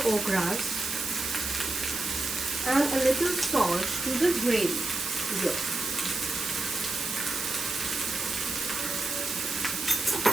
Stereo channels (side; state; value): right; noise; hiss, 3 dB below the sound